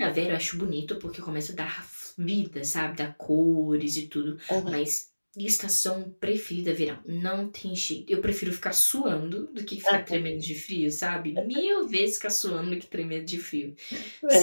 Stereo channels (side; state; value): both; inverted; correlation -1.00